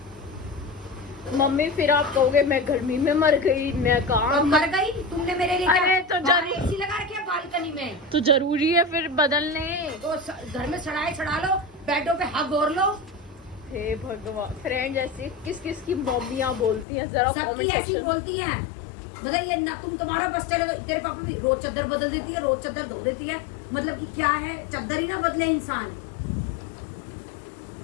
मम्मी फिर आप कहोगे मैं गर्मी में मर गई, मैं और काम मर गई तुमने मेरे लिए अरे तो बाहर जरूर- एसी लगा रखी है बालकनी में, तो जरूरी है फिर बदलने। तो घर में चढ़ा लो, बेडों पे हग और लो। हे भगवान, फ्रेंड ऐसे किस किस की मम्मियाँ बोलती हैं जरा सबकी comment ऐसी section- बोलती हैं, मतलब ये ना तुम्हारा बस चले तो तेरे पापा भी रोज चादर बदल देती है, रोज चादर धो देती है, मतलब कि क्या है चादर ही ना बदले इंसान।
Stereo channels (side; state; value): right; drops out; at 16.9 s